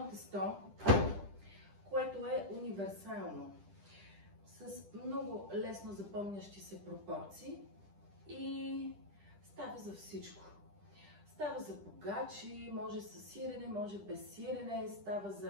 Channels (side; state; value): left; late; 10 ms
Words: тесто, което е универсално, с много лесно запомнящи се пропорции и става за всичко. Става за погачи, може с сирене, може без сирене, става